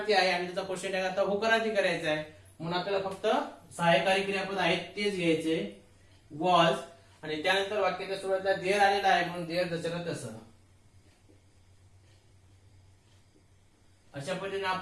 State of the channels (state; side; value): identical; both; correlation 1.00